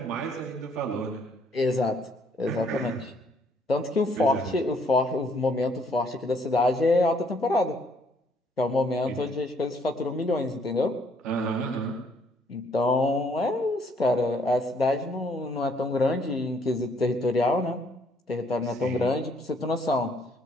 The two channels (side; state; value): both; normal; correlation 0.66